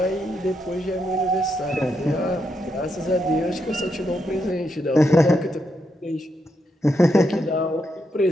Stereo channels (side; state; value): both; normal; correlation 0.81